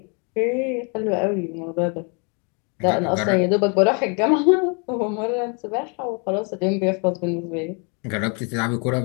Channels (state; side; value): quieter; right; 35.4 dB